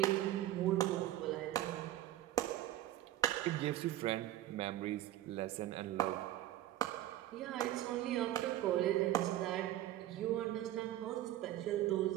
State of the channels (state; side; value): quieter; left; 13.7 dB